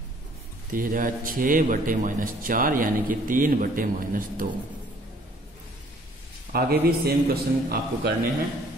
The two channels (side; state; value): both; normal; correlation 0.58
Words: तो यह जाएगा 6/-4 यानी कि 3/-2। आगे भी सेम क्वेश्चन आपको करने हैं,